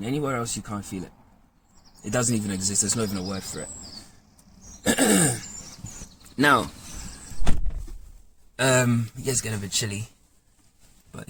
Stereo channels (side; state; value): both; identical; correlation 1.00